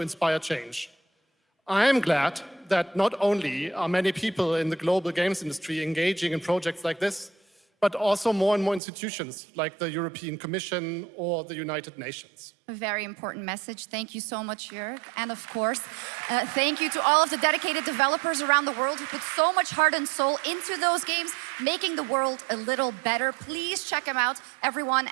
inspire change. I am glad that not only are many people in the global games industry engaging in projects like this, but also more and more institutions like the European Commission or the United Nations. A very important message. Thank you so much, Jörg. And of course, thank you to all of the dedicated developers around the world who put so much heart and soul into those games, making the world a little better. Please check them out, everyone,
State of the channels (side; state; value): left; drops out; at 8.8 s